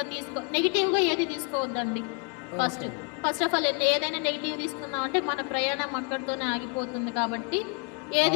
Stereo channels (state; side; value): quieter; right; 37.8 dB